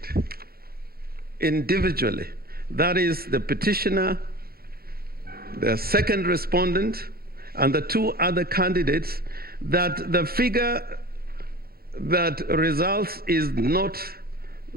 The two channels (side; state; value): left; late; 0.44 ms